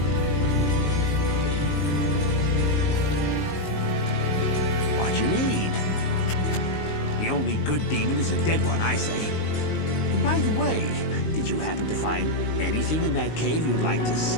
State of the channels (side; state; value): right; late; 19 ms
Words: What you need? The only good demon is a dead one, I say. By the way, did you happen to find anything in that cave you'd like to